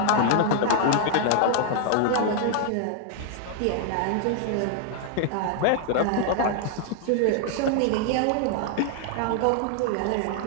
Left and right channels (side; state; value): both; different; correlation 0.00